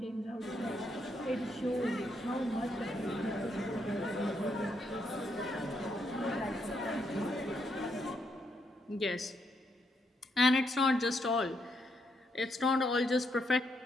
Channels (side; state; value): both; normal; correlation 0.77